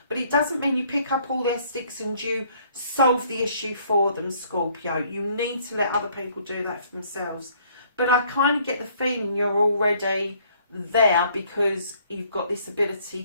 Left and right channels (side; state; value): both; inverted; correlation -0.62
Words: But it doesn't mean you pick up all their sticks and you solve the issue for them, Scorpio. You need to let other people do that for themselves. But I kind of get the feeling you're already there because you've got this ability